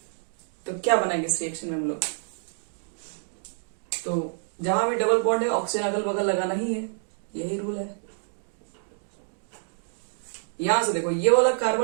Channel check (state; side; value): silent; left; digital silence